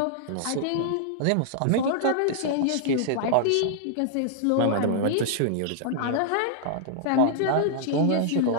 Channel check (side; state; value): both; different; correlation -0.01